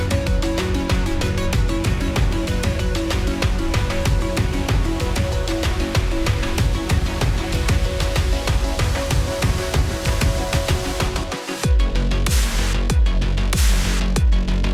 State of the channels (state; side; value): identical; both; correlation 1.00